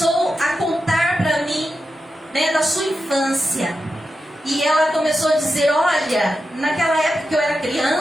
a contar para mim, né, da sua infância. E ela começou a dizer: olha, naquela época que eu era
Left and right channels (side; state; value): both; normal; correlation 0.89